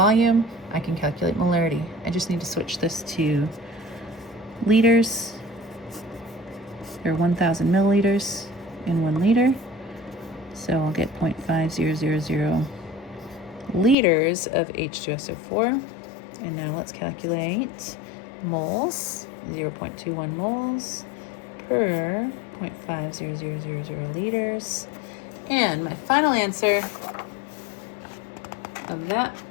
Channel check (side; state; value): right; drops out; at 14.0 s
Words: I can calculate molarity. I just need to switch this to liters. There are 1,000 milliliters in 1 liter. So I'll get 0.5000 liters of H2SO4. And now let's calculate moles. 0.21 moles per 0.50000 liters. And my final answer of that